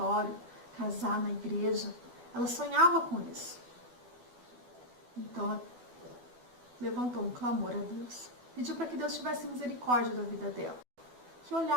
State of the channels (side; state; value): left; late; 12 ms